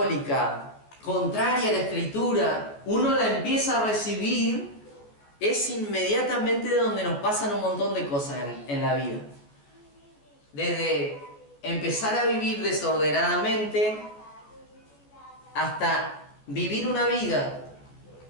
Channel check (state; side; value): late; right; 14 ms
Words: contraria a la Escritura, uno la empieza a recibir, es inmediatamente donde nos pasan un montón de cosas en la vida. Desde empezar a vivir desordenadamente hasta vivir una vida